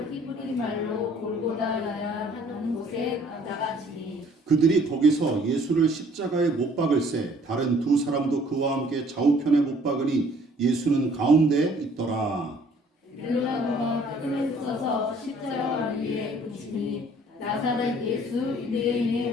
히브리 말로 골고다라 하는 곳에 나가시니 그들이 거기서 예수를 십자가에 못 박을새 다른 두 사람도 그와 함께 좌우편에 못 박으니 예수는 가운데 있더라. 빌라도가 끈을 써서 십자가 위에 붙이니 나사렛 예수 유대인의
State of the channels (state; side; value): normal; both; correlation 0.58